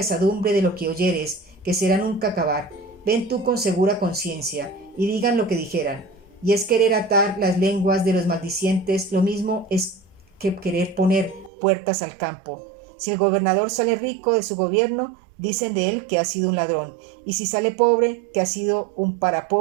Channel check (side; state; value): left; drops out; at 11.5 s